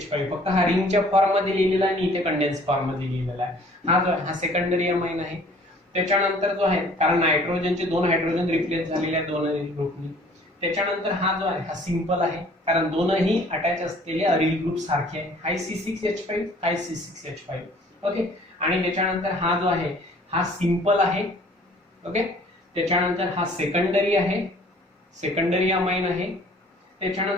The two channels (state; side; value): normal; both; correlation 0.54